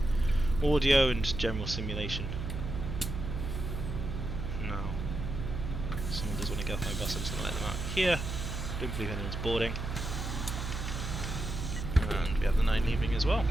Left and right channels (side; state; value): right; noise; hum, 4 dB below the sound